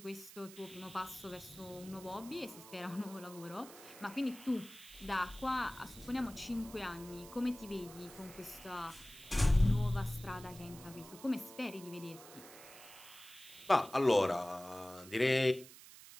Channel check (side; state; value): right; noise; hiss, 17 dB below the sound